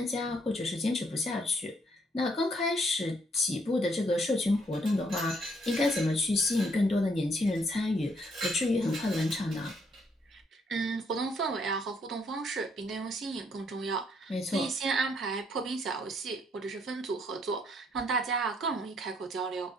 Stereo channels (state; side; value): normal; both; correlation 0.70